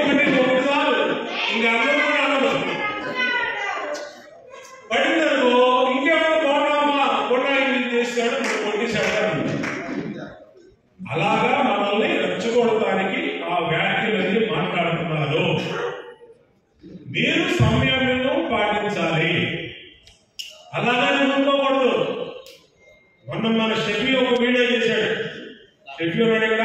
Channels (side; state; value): both; identical; correlation 1.00